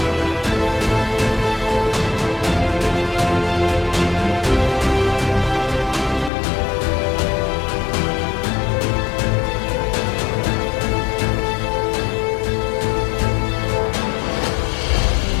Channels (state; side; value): drops out; right; at 6.3 s